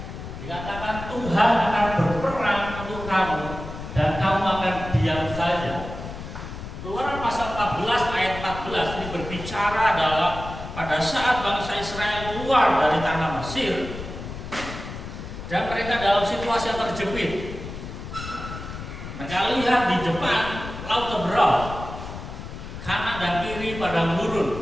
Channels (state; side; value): noise; left; rumble, 10 dB below the sound